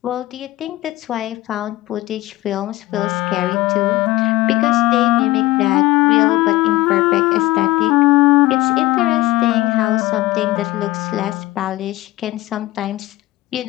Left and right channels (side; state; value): right; quieter; 17.9 dB